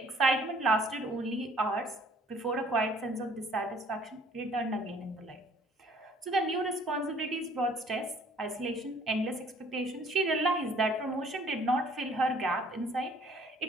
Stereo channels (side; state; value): both; normal; correlation 0.57